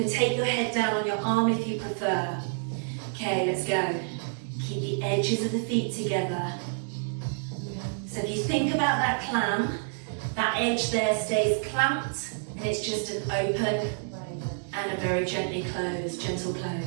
take your head down on your arm if you prefer. Okay, let's go. Keep the edges of the feet together. So if you think about that clam, that edge there stays clamped and it's just an open and a very gently closed, gentle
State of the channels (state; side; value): silent; left; digital silence